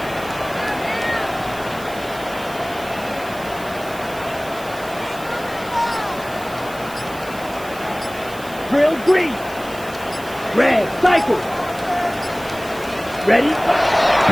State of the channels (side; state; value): right; noise; hiss, 17 dB below the sound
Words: Drill, green. Red, cycle. Ready?